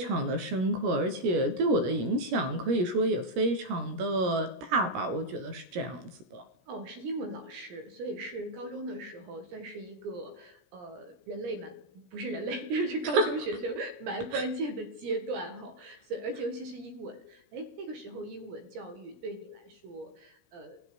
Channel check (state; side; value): late; left; 17 ms